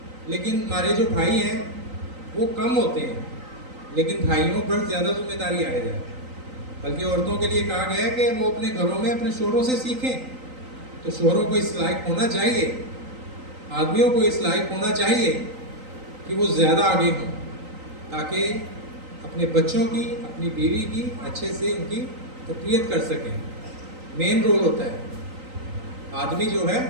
لیکن ہمارے جو بھائی ہیں وہ کم ہوتے ہیں، لیکن بھائیوں پر زیادہ ذمہ داری آئے جائے۔ بلکہ عورتوں کے لیے کہا گیا ہے کہ وہ اپنے گھروں میں اپنے شوہروں سے سیکھیں، تو شوہروں کو اس لائق ہونا چاہیے، آدمیوں کو اس لائق ہونا چاہیے کہ وہ زیادہ آگے ہوں، تاکہ اپنے بچوں کی، اپنی بیوی کی اچھے سے ان کی تربیت کر سکیں۔ مین رول ہوتا ہے، آدمی جو ہے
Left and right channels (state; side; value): late; left; 3.9 ms